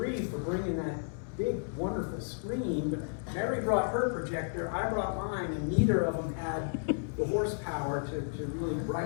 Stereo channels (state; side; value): silent; right; digital silence